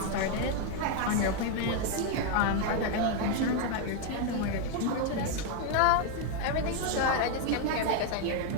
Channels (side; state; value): both; different; correlation 0.01